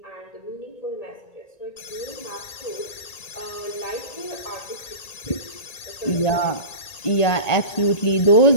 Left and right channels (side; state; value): right; late; 1.8 ms